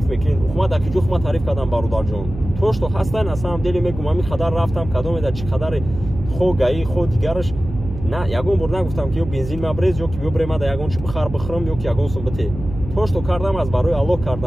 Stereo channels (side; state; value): right; noise; hum, 10 dB below the sound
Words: мекунед. Ухма дар ки ҷо хума тариф кардам бародарҷон. То што ҳастай на самом деле мегӯям ами қадар рафтам, кадомеда чӣ қадаре хо гаи хо дигараш. На, ягон бор нагуфтам ки ё бензин мабрез, ё ки бибре мада ягон чӣ бихар бихӯрам, ё ки ягон сум бите. То што кардам аз барои Аллоҳ